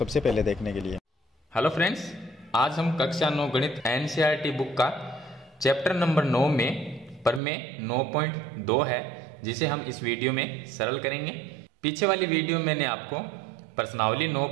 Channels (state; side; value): drops out; left; at 7.4 s